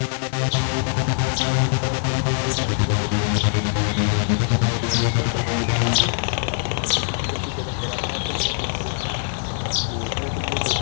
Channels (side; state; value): right; silent; 64 dB below the other